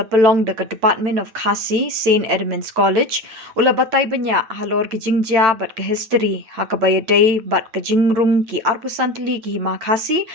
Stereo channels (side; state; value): left; late; 9.0 ms